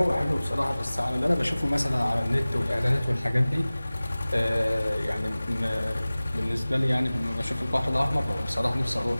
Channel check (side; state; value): both; inverted; correlation -0.99